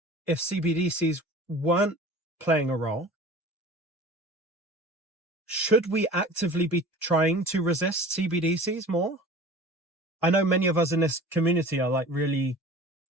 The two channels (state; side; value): normal; both; correlation 0.41